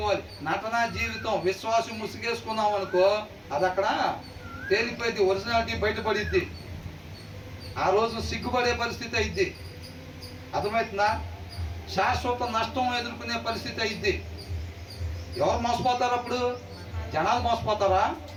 నటనా జీవితం విశ్వాసం ముసుగేసుకున్నాం అనుకో, అది అక్కడ తేలిపోయింది, ఒరిజినాలిటీ బయటపడిద్ది. ఆ రోజు సిగ్గుపడే పరిస్థితి అయింది. అర్థమవుతుందా? శాశ్వత నష్టం ఎదుర్కొనే పరిస్థితి అయింది. ఎవరు మోసపోతారు అప్పుడు? జనాలు మోసపోతారా?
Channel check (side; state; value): both; identical; correlation 1.00